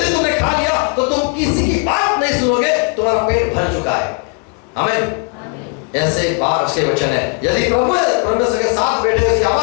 तुमने खा लिया तो तुम किसी की बात नहीं सुनोगे, तुम्हारा पेट भर चुका है। आमीन। ऐसे बार उसके वचन है, यदि प्रभु परमेश्वर के साथ बैठे उसकी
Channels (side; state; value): right; quieter; 34.8 dB